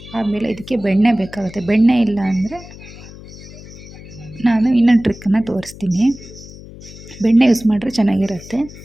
ಆಮೇಲೆ ಇದಕ್ಕೆ ಬೆಣ್ಣೆ ಬೇಕಾಗುತ್ತೆ. ಬೆಣ್ಣೆ ಇಲ್ಲ ಅಂದರೆ ನಾನು ಇನ್ನೊಂದು ಟ್ರಿಕ್ಕನ್ನು ತೋರಿಸ್ತೀನಿ. ಬೆಣ್ಣೆ ಯೂಸ್ ಮಾಡಿದ್ರೆ ಚೆನ್ನಾಗಿರುತ್ತೆ.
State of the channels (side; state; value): left; noise; hum, 17 dB below the sound